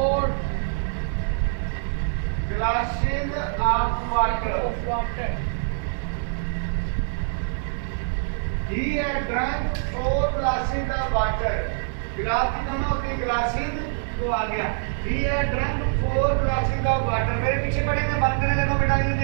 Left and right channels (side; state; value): left; silent; digital silence